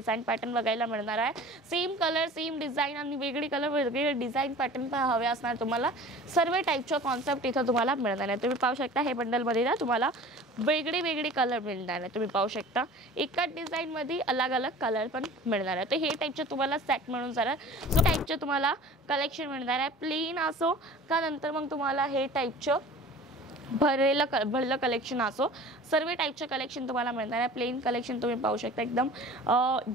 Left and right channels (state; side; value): normal; both; correlation 0.42